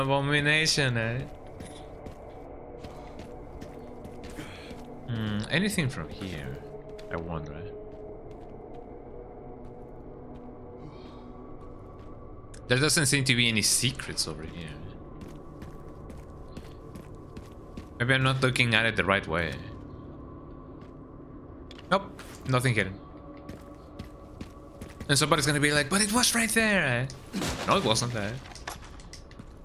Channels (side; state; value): both; identical; correlation 1.00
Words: Anything from here? I wonder. There doesn't seem to be any secrets over here. Maybe I'm not looking at it the right way. Nope, nothing hidden. And somebody's gonna be like, but it was right there, No, it wasn't there.